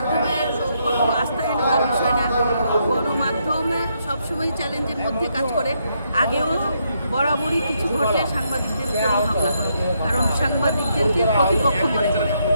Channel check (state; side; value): inverted; both; correlation -0.76